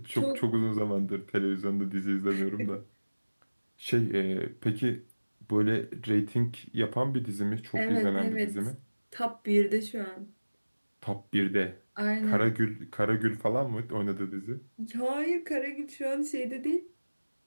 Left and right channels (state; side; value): inverted; both; correlation -1.00